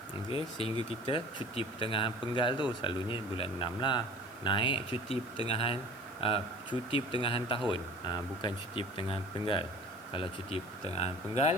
Okey, sehingga kita cuti pertengahan penggal tu selalunya bulan 6 lah. Naik cuti pertengahan tahun. Bukan cuti pertengahan penggal. Kalau cuti pertengahan penggal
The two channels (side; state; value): left; noise; hiss, 23 dB below the sound